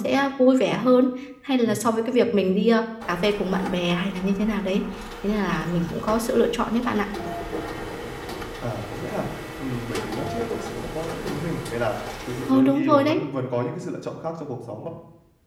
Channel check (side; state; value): both; identical; correlation 1.00